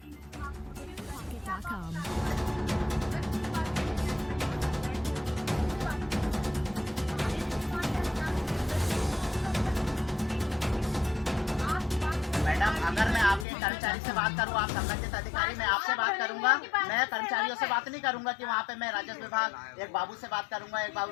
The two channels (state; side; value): drops out; right; at 13.5 s